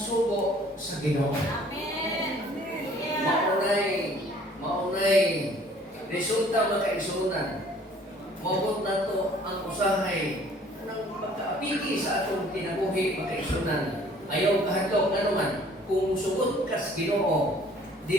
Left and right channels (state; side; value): normal; both; correlation 0.55